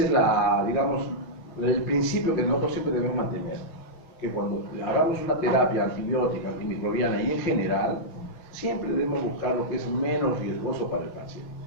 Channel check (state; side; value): late; right; 5.7 ms